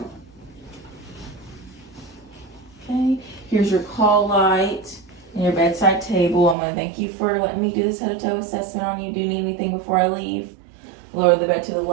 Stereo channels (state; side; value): drops out; left; at 6.6 s